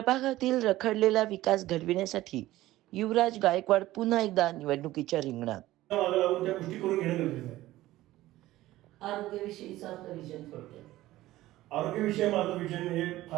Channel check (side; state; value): left; quieter; 16.2 dB